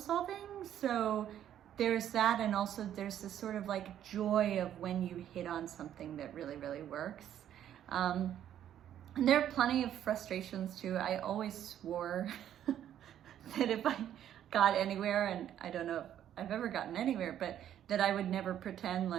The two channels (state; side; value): quieter; left; 10.7 dB